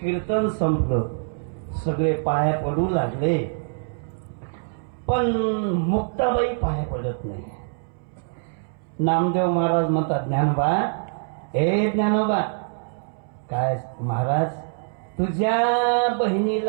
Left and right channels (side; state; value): left; silent; 62 dB below the other